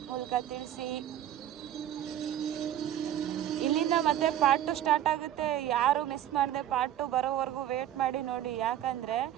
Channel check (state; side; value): quieter; left; 11.6 dB